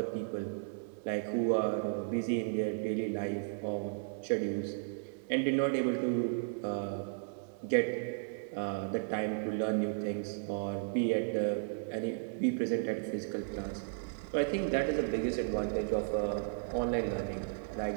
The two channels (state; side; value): silent; left; digital silence